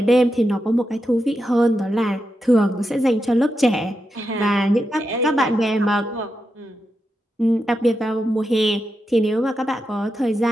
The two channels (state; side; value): normal; both; correlation 0.87